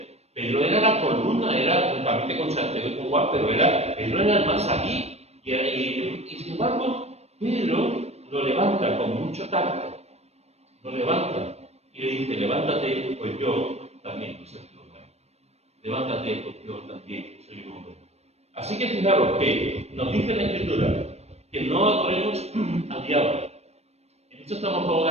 Pedro era la columna, era juntamente con Santiago y con Juan, pero Pedro era el más aquí. Y sin embargo, Pedro lo levanta con mucho tacto, lo levanta y le dice, levántate, pues yo también soy un hombre. Levántate, pues yo también soy un hombre. Así que fijaros que nos dice la Escritura que no adoremos al diablo. En esto estamos todos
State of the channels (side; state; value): left; late; 0.31 ms